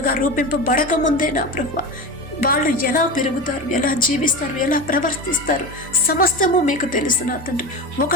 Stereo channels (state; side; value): normal; both; correlation 0.26